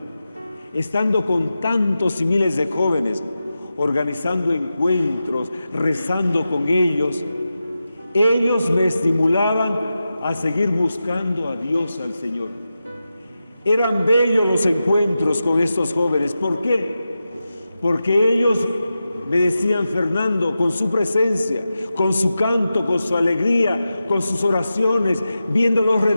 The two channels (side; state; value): both; inverted; correlation -0.92